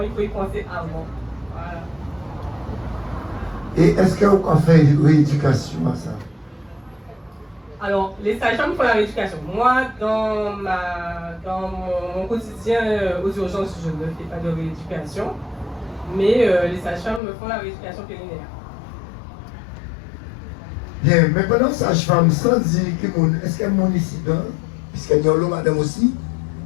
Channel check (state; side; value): drops out; right; at 17.2 s